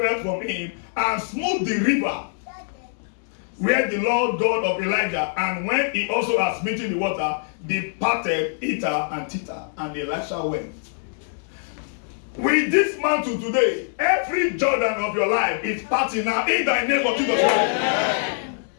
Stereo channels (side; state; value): right; silent; digital silence